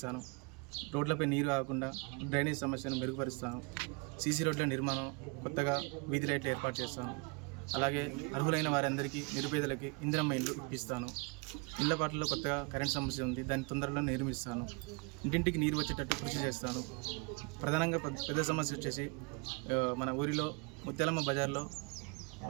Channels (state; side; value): quieter; left; 30.8 dB